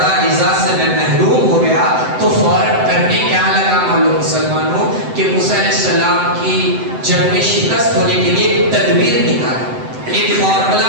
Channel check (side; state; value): left; late; 7.9 ms